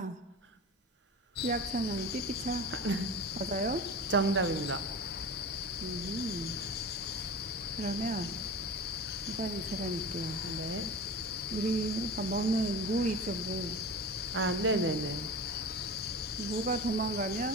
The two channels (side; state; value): both; normal; correlation 0.31